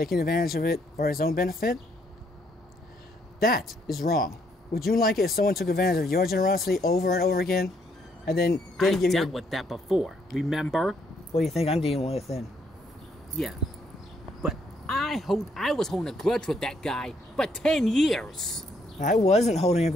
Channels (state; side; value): normal; both; correlation 0.71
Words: advantage of it for his own benefit, that is wrong. Would you like it if someone took advantage of your generosity over and over again, and then didn't give you? I dealt with that before. Remember? What do you think I'm dealing with then? Yeah, but I was holding a grudge with that guy for 10 years. I wasn't holding a